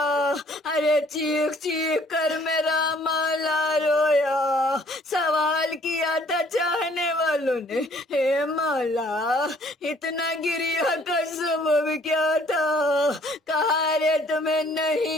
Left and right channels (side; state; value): both; normal; correlation 0.59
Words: ارے چیخ چیخ کر میرا مولا رویا، سوال کیا تھا چاہنے والوں والوں نے اے مولا اتنا گریا کا سبب کیا تھا؟ کہا رے تمہیں